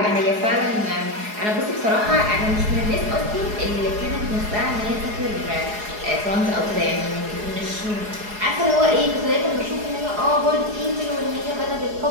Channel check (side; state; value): left; late; 4.8 ms